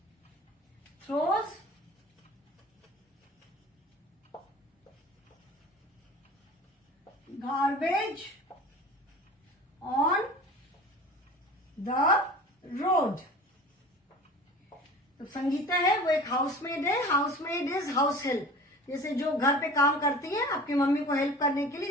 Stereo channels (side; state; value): both; normal; correlation 0.40